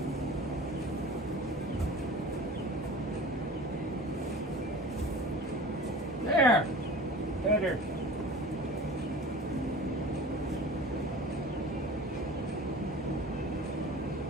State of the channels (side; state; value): both; normal; correlation 0.39